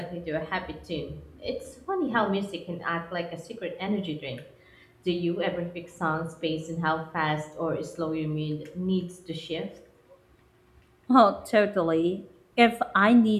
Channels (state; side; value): identical; both; correlation 1.00